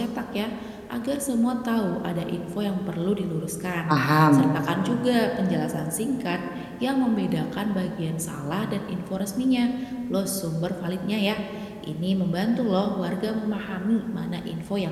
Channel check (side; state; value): both; identical; correlation 1.00